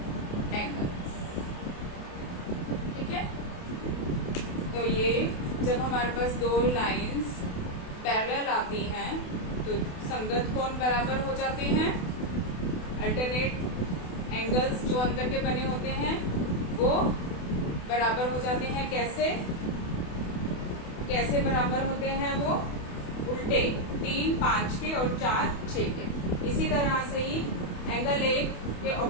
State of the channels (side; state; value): right; late; 28 ms